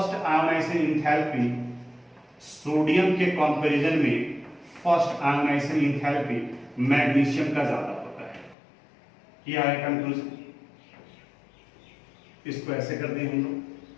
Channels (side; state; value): right; drops out; at 8.6 s